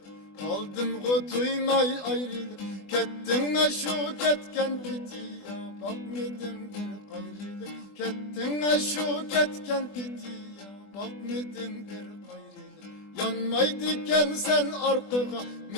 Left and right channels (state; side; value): late; right; 20 ms